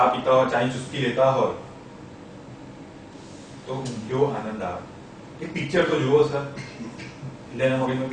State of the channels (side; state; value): both; identical; correlation 1.00